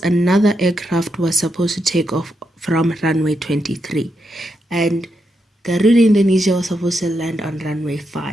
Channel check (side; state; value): both; normal; correlation 0.83